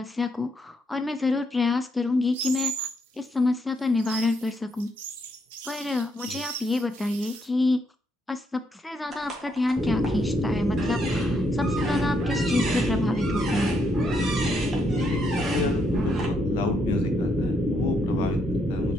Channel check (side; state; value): both; normal; correlation 0.75